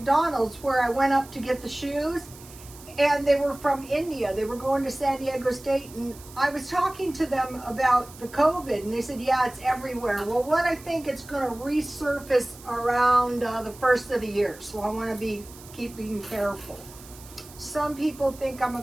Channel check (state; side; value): noise; right; hiss, 19 dB below the sound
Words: where I went up to get the shoes, and they were from India. They were going to San Diego State, and I was talking to them about the COVID, and they said, yeah, it's everywhere. Well, what I think it's going to resurface around the first of the year. So I want to be keeping careful. Some people think I'm a